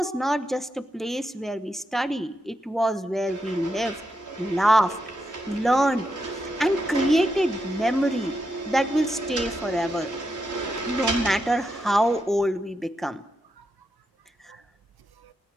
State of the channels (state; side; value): normal; both; correlation 0.84